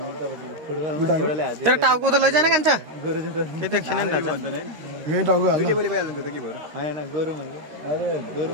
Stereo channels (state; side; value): late; left; 13 ms